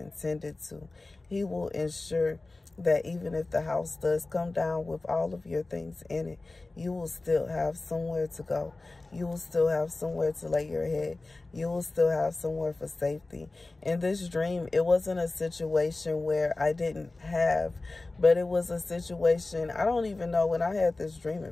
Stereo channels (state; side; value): quieter; right; 3.2 dB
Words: to. He will ensure that even if the house does come down with all of your things in it, you will still have somewhere to go. You will still have somewhere to lay your head. You will still have somewhere for safety. In this dream, it wasn't a situation where I didn't have, but it was a situation, I don't even know when I had this dream